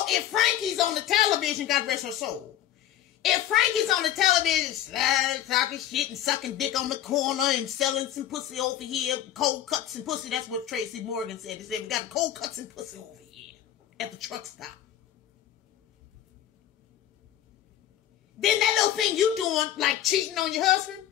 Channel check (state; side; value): quieter; right; 11.9 dB